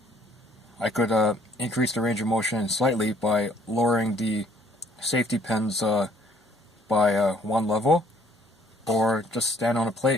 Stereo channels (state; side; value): normal; both; correlation 0.62